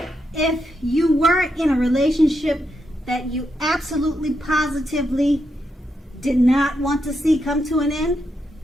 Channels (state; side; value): normal; both; correlation 0.83